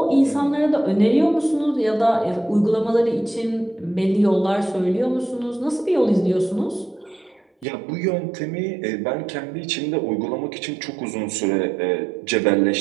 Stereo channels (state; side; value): drops out; left; at 7.7 s